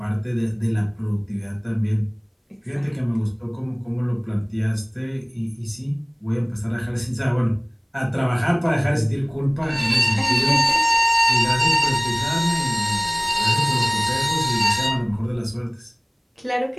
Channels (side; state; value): both; identical; correlation 1.00